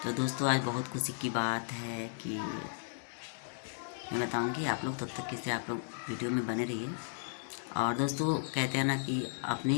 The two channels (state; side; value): silent; right; 55 dB below the other